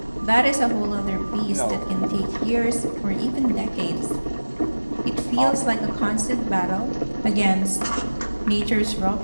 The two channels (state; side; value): inverted; both; correlation -1.00